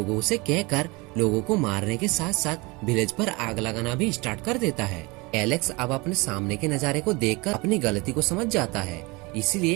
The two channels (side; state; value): left; quieter; 25.5 dB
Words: से कहकर लोगों को मारने के साथ साथ विलेज पर आग लगाना भी स्टार्ट कर देता है। एलेक्स अब अपने सामने के नजारे को देखकर अपनी गलती को समझ जाता है,